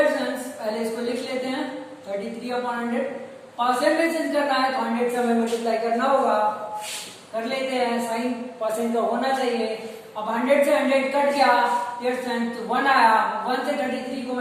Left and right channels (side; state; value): both; identical; correlation 1.00